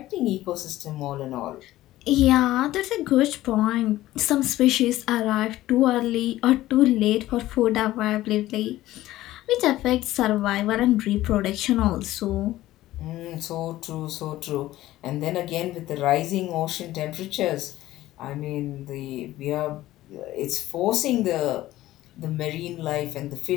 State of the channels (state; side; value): quieter; right; 15.6 dB